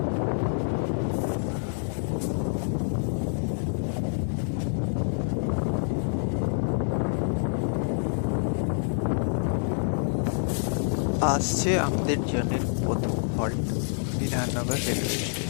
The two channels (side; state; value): right; silent; digital silence